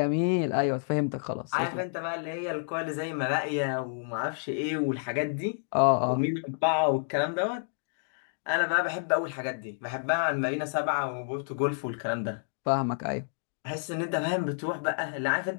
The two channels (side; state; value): right; silent; digital silence